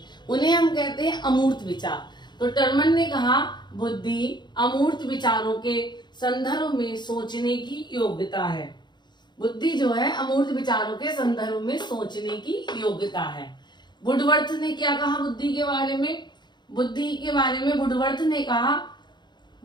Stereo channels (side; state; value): right; late; 0.21 ms